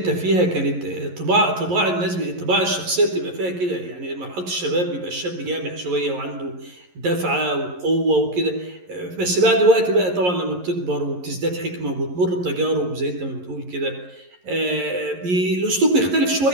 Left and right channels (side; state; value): left; late; 11 ms